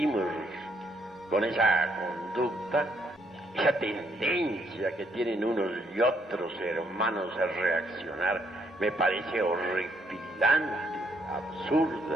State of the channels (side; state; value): both; normal; correlation 0.72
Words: con esa conducta, esa tendencia que tienen unos y otros hermanos a reaccionar, me parece horripilante,